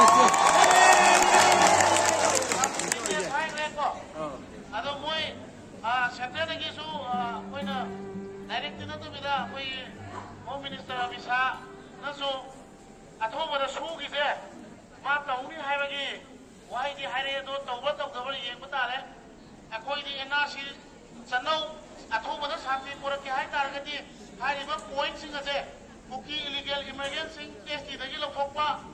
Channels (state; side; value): identical; both; correlation 1.00